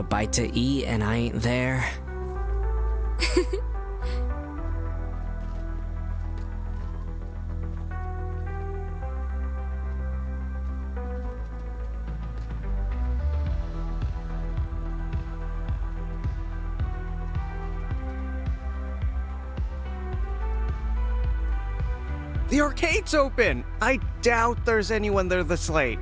bite to eat and I ain't there... The arcade's open! I doubt there's anyone there this late.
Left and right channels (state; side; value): identical; both; correlation 1.00